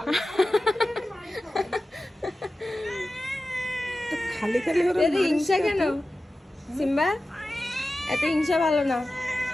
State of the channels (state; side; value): normal; both; correlation 0.95